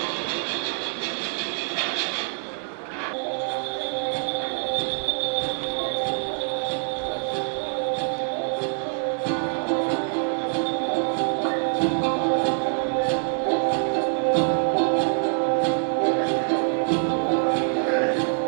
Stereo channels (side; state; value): left; silent; 60 dB below the other